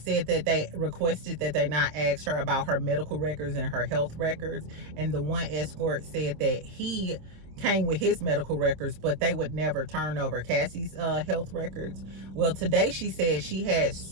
that they requested that they not ask her about her medical records and her health records, and the one escort said that he came with his medical records, but they would never turn over Cassie's health records. Well, today she said she had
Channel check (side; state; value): left; late; 26 ms